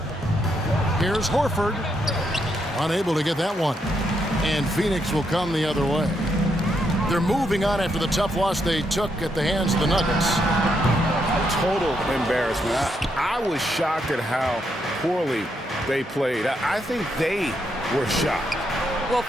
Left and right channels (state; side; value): normal; both; correlation 0.78